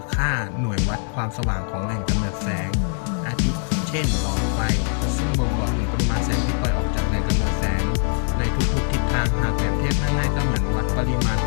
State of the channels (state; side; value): silent; right; 58 dB below the other